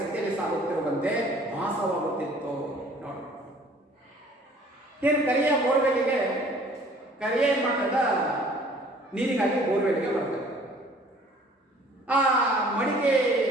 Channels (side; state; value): both; normal; correlation 0.53